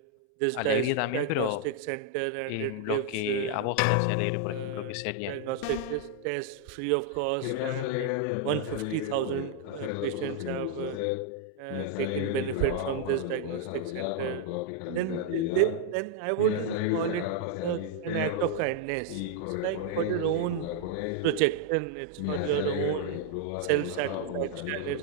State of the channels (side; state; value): both; different; correlation 0.00